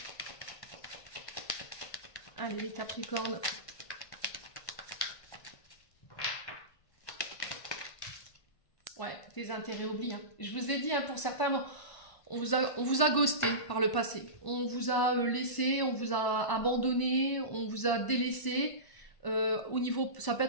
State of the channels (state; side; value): late; right; 1.5 ms